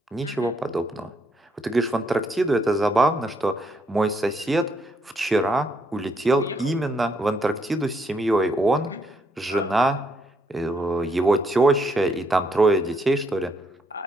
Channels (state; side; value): normal; both; correlation 0.73